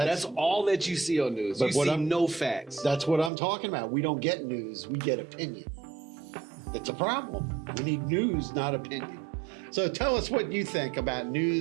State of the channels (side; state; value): left; drops out; at 3.3 s